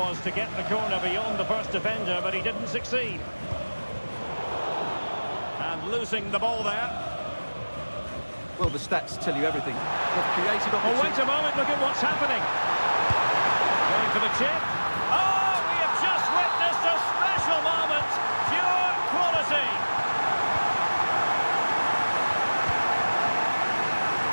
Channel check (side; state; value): both; inverted; correlation -1.00